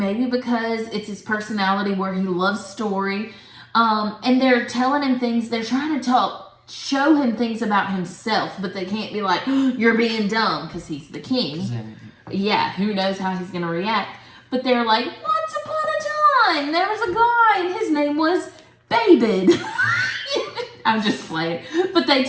because it's his personality where he loves story, and they're telling him things. They're trying to show him things about himself, but they can't be like, you're being dumb, because he's the king. Yeah, who knows how he's going to react. But they're like, once upon a time, there was a guy, and his name was David. I'm just playing. But they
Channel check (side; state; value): both; identical; correlation 1.00